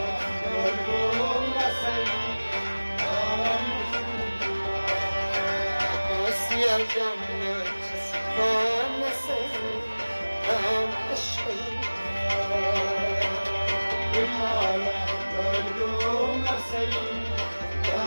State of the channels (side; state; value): both; inverted; correlation -1.00